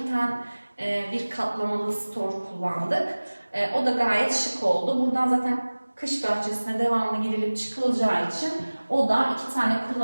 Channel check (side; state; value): both; inverted; correlation -1.00